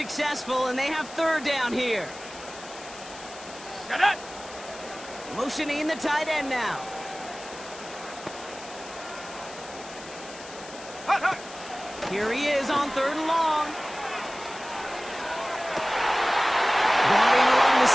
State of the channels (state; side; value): noise; left; hiss, 16 dB below the sound